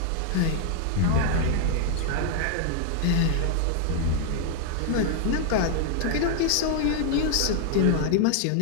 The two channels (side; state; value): both; different; correlation 0.00